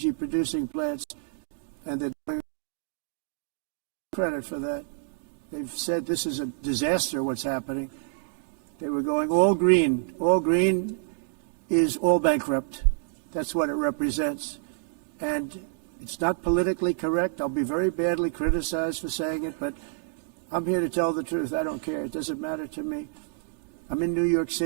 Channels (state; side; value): silent; left; digital silence